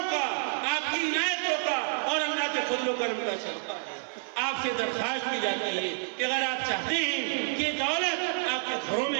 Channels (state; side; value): silent; left; digital silence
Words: کا، آپ کی عنایتوں کا اور اللہ کے فضل و کرم کا صدقہ ہے۔ آپ سے درخواست کی جاتی ہے کہ اگر آپ چاہتے ہیں کہ دولت آپ کے گھروں